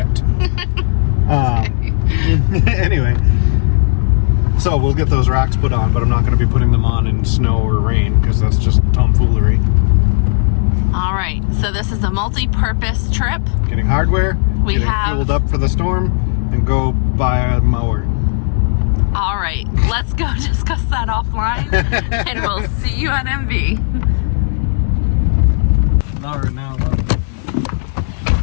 Anyway, so we'll get those racks put on, but I'm not going to be putting them on in snow or rain because that's just tomfoolery. All right. So this is a multi-purpose trip. Getting hardware, getting fueled up for the storm, and go buy a mower. All right. Let's go discuss that offline, and we'll see you at MV. Not right now.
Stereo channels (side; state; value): right; silent; digital silence